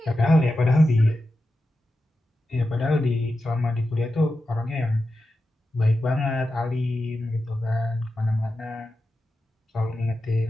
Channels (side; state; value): both; normal; correlation 0.91